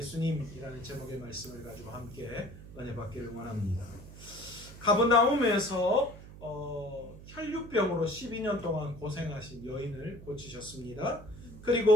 제목의 말씀을 가지고 함께 은혜 받기를 원합니다. 가버나움에서 혈류병으로 12년 동안 고생하신 여인을 고치셨습니다.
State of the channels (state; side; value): noise; right; hum, 16 dB below the sound